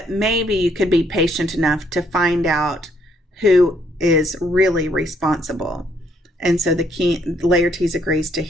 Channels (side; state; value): both; normal; correlation 0.69